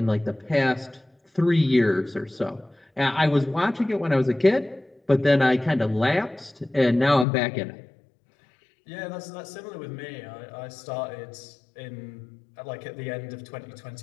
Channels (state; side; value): drops out; right; at 7.2 s